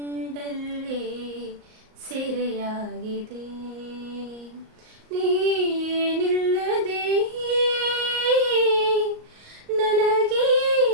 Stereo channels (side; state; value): left; late; 38 ms